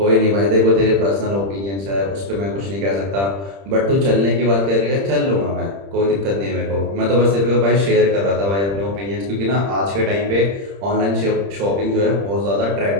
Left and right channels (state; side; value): late; left; 30 ms